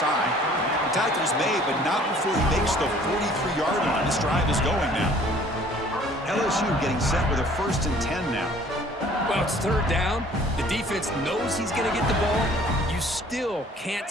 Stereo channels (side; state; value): both; normal; correlation 0.54